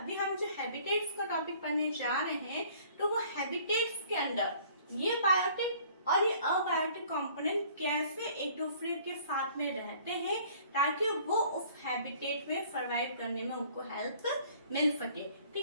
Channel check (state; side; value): inverted; both; correlation -0.54